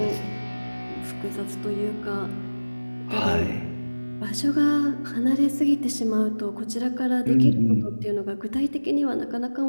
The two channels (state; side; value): inverted; both; correlation -1.00